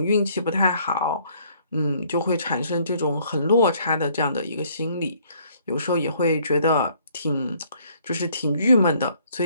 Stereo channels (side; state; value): both; inverted; correlation -0.63